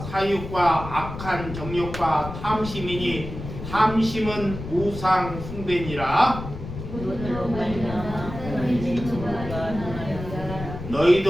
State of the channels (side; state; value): left; noise; rumble, 9 dB below the sound